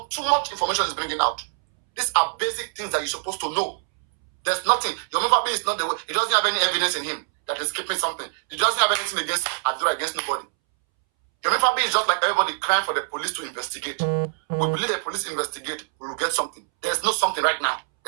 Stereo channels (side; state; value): left; silent; 63 dB below the other